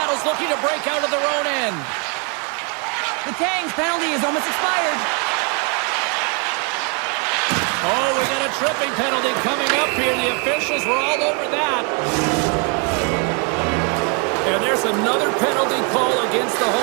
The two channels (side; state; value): left; quieter; 36.4 dB